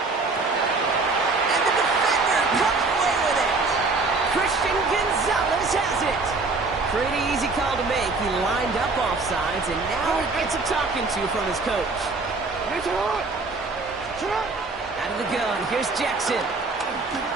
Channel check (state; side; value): quieter; left; 3.7 dB